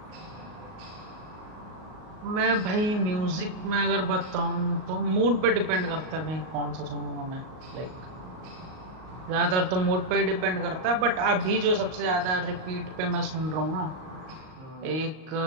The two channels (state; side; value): late; left; 38 ms